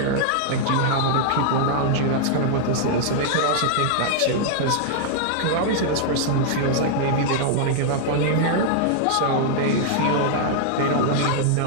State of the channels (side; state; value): both; different; correlation -0.01